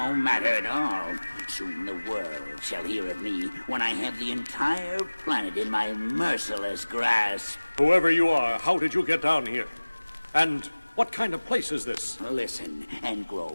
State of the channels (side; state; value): both; inverted; correlation -1.00